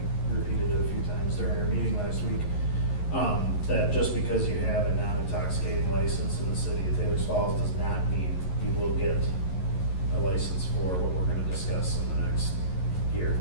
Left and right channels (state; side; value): late; right; 11 ms